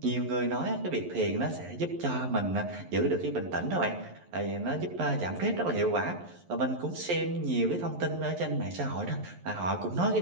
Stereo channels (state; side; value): late; left; 11 ms